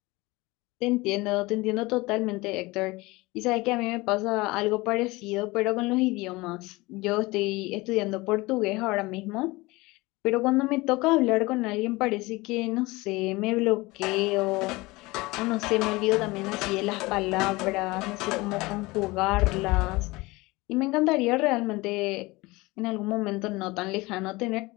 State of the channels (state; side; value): quieter; right; 22.2 dB